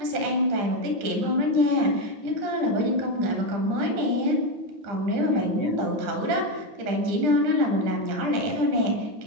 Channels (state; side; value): late; left; 10 ms